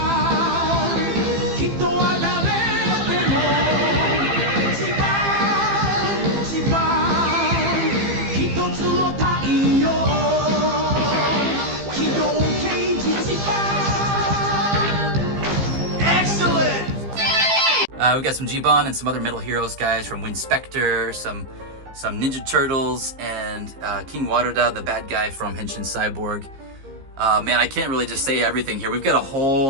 We've got some Jiban and some other Metal Heroes guys from Winspector, some Ninja Turtles, and King Waruda, the bad guy from Henshin Cyborg. Man, I can't really just say everything here. We've got a whole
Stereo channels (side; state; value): left; late; 15 ms